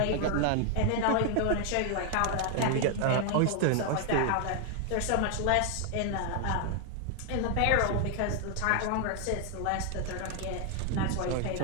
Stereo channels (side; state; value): both; different; correlation 0.00